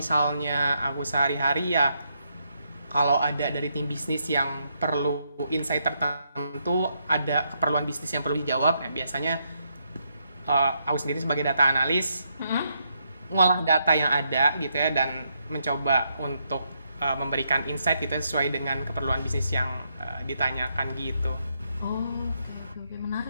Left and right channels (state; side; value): inverted; both; correlation -0.78